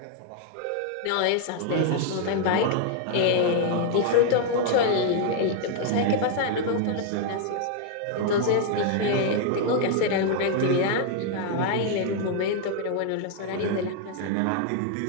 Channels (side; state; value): both; different; correlation 0.00